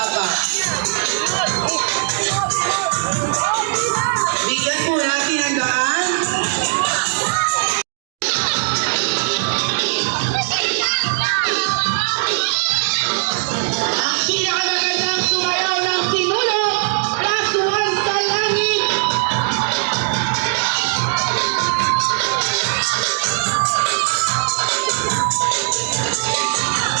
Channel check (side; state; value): left; silent; digital silence